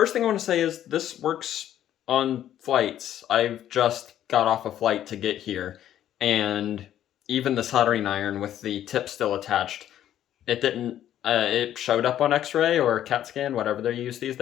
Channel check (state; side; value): quieter; right; 11.4 dB